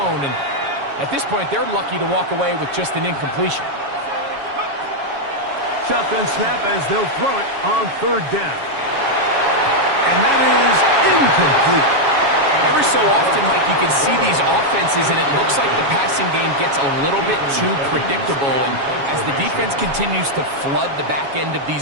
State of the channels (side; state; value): left; late; 7.2 ms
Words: And at this point, they're lucky to walk away with just an incompletion. Shotgun snap as they'll throw it on 3rd down. And that is incomplete. Every so often, Mike, you can see these offenses, and it looks like the passing game gets a little bit too predictable. And as the defense continues to flood the back end of